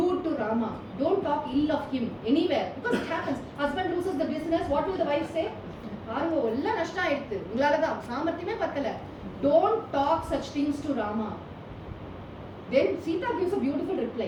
to Rama. Don't talk ill of him anywhere. Because it happens. Husband loses the business. What will the wife say? Don't talk such things to Rama. Then Sita gives a beautiful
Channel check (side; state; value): both; identical; correlation 1.00